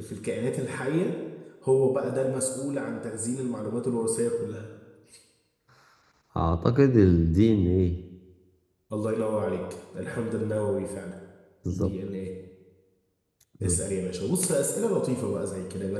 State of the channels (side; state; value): both; identical; correlation 1.00